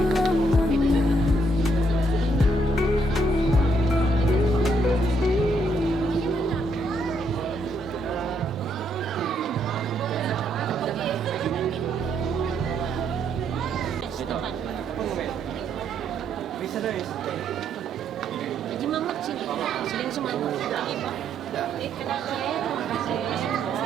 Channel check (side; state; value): both; normal; correlation 0.73